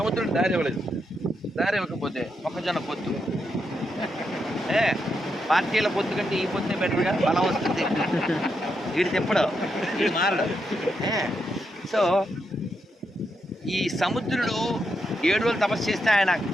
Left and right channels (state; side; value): normal; both; correlation 0.83